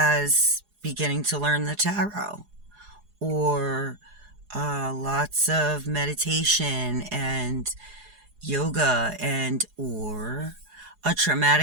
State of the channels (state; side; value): late; left; 4.8 ms